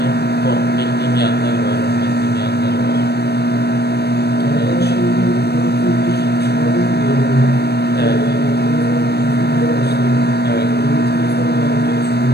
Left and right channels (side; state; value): right; late; 0.47 ms